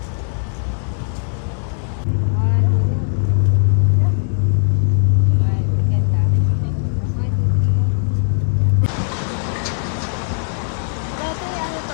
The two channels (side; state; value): right; silent; 67 dB below the other